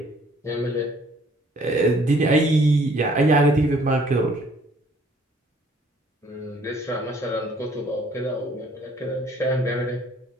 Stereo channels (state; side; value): normal; both; correlation 0.59